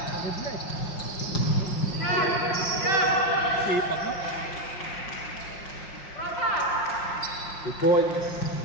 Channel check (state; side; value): late; right; 5.6 ms